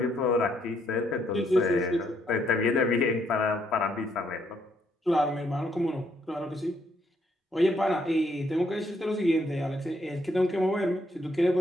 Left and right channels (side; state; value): both; normal; correlation 0.72